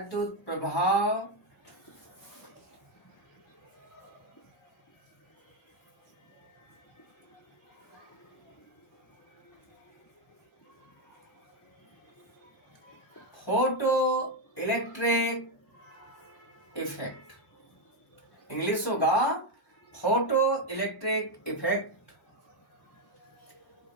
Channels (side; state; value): both; normal; correlation 0.05